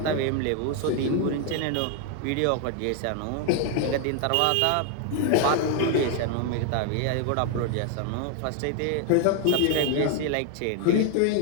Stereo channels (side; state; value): both; different; correlation 0.01